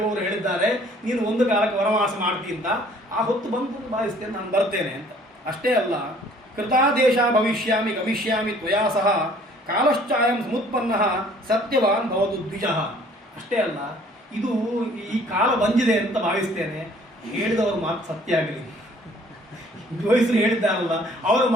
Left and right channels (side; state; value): both; normal; correlation 0.56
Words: ಹೇಳಿದ್ದಾರೆ, ನೀನು ಒಂದು ಕಾಲಕ್ಕೆ ವನವಾಸ ಮಾಡ್ತೀನಿ ಅಂತ. ಆ ಹೊತ್ತು ಬಂದು ಭಾವಿಸ್ತೇನೆ, ನಾನು ಬರ್ತೇನೆ ಅಂತ. ಅಷ್ಟೇ ಅಲ್ಲ, ಕೃತಾದೇಶ ಭವಿಷ್ಯಾಮಿ ಗಮಿಷ್ಯಾಮಿ ತ್ವಯಾ ಸಹ ಕಾಲಶ್ಚಾಯಂ ಸಮುತ್ಪನ್ನ ಸತ್ಯವಾನ್ ಭವತು ದ್ವಿಜಃ. ಅಷ್ಟೇ ಅಲ್ಲ, ಇದು ಈ ಕಾಲ ಬಂದಿದೆ ಅಂತ ಭಾವಿಸ್ತೇನೆ, ಹೇಳಿದವರು ಮಾತು ಸತ್ಯ ಆಗಲಿ, ಜೋಯಿಸರು ಹೇಳಿದ್ದಾರಲ್ಲ ಅವರ